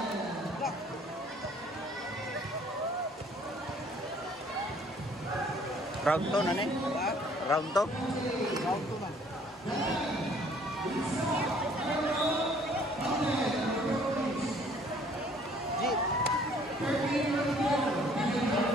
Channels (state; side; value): normal; both; correlation 0.58